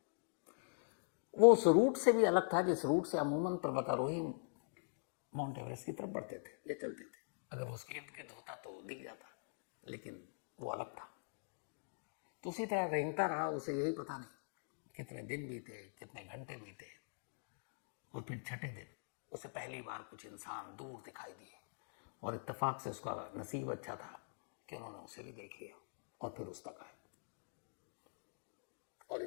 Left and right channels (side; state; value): right; silent; digital silence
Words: वो उस रूट से भी अलग था जिस रूट से अमूमन पर्वतारोही माउंट एवरेस्ट की तरफ बढ़ते थे या चलते थे। अगर वो उसके इर्द गिर्द होता तो दिख जाता, लेकिन वो अलग था। तो उसी तरह रेंगता रहा। उसे यही पता नहीं कितने दिन बीते, कितने घंटे बीते, और फिर छठे दिन उसे पहली बार कुछ इंसान दूर दिखाई दिए और इत्तेफाक से उसका नसीब अच्छा था कि उन्होंने उसे भी देख लिया और फिर उस तक आए और